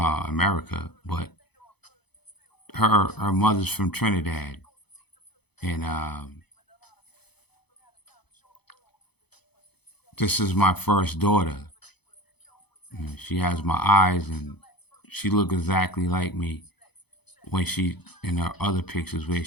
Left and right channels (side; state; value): right; late; 0.98 ms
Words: but her mother's from Trinidad, and this is my first daughter. She has my eyes, and she look exactly like me when she in her other pictures where